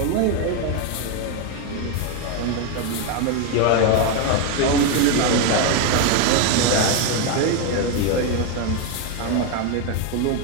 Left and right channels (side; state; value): both; different; correlation 0.02